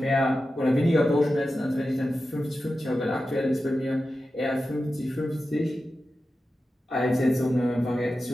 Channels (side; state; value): both; normal; correlation 0.92